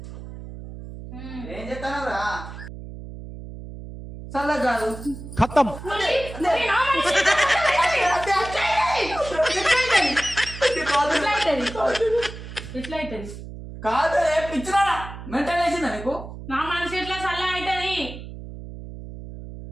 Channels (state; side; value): noise; right; hum, 12 dB below the sound